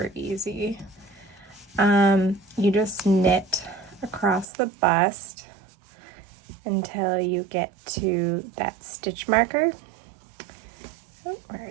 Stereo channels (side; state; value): left; drops out; at 4.5 s